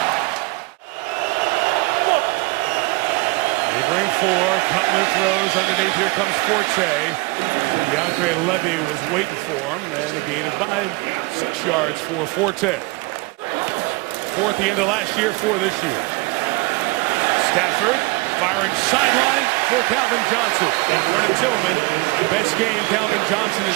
They bring 4. Cutler throws underneath. Here comes Forte. DeAndre Levy was waiting for him. And a gain of 6 yards for Forte. 4th the end of last year, 4 this year. Stafford firing sideline for Calvin Johnson. Vernon Tillman, best game Calvin Johnson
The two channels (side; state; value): left; quieter; 25.0 dB